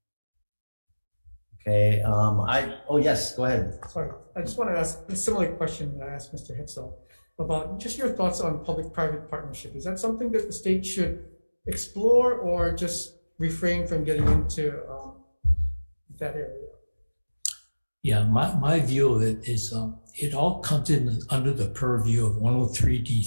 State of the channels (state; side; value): inverted; both; correlation -1.00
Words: Okay, yes, go ahead. Sorry, I just want to ask a similar question that I asked Mr. Hitzel about just your thoughts on public-private partnership. Is that something that the state should explore, or just refrain from getting into that area? Yeah, my view of it is it all comes in under the purview of